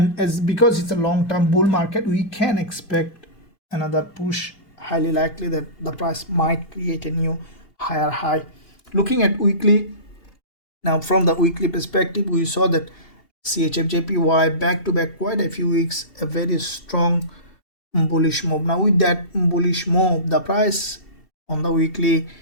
as because it's a long-term bull market, we can expect another push. Highly likely that the price might create a new higher high. Looking at weekly, now from the weekly perspective we saw that CHFJPY back to back quite a few weeks a very strong bullish move. Now with that bullish move, the price on the weekly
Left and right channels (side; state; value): right; late; 2.7 ms